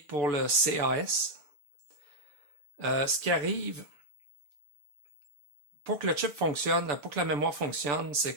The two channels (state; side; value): late; left; 6.9 ms